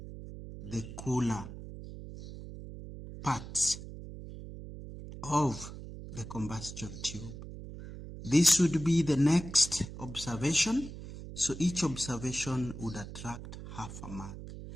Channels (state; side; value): noise; right; hum, 11 dB below the sound